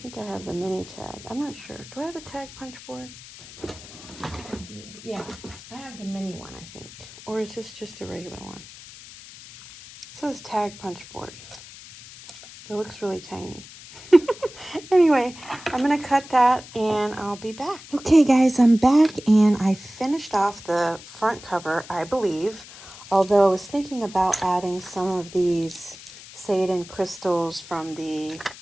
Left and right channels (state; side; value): noise; left; hiss, 17 dB below the sound